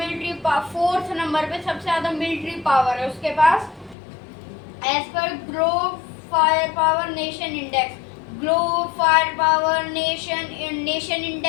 पावर, फोर्थ नंबर पे सबसे ज्यादा मिलिट्री पावर है उसके पास एज पर globe fire power nation index. Globe fire power nation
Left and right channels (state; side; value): drops out; right; at 4.0 s